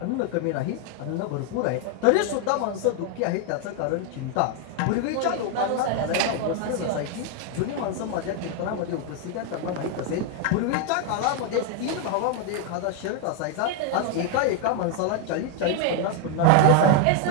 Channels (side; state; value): both; different; correlation 0.01